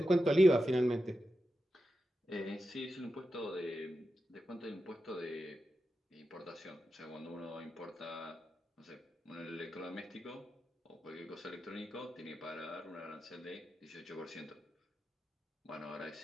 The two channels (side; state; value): both; normal; correlation 0.90